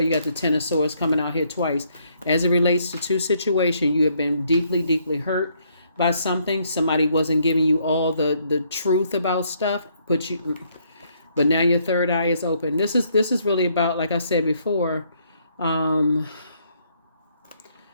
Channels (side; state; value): both; inverted; correlation -0.70